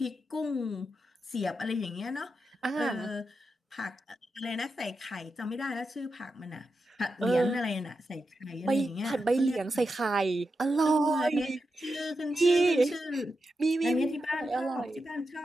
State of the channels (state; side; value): normal; both; correlation 0.88